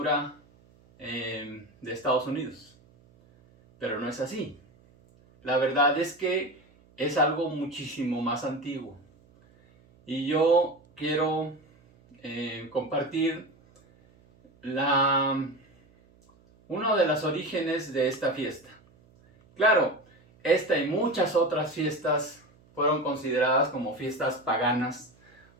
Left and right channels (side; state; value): right; noise; hum, 30 dB below the sound